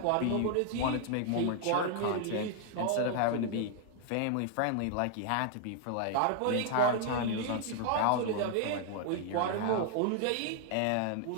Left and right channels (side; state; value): both; different; correlation 0.00